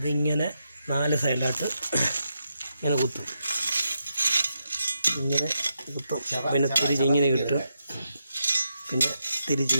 4 സൈഡിലായിട്ട് ഇങ്ങനെ കുത്തും. ഇങ്ങനെ കുത്തും, പിന്നെ തിരിച്ചിങ്ങനെ കിട്ടും, പിന്നെ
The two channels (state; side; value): inverted; both; correlation -0.84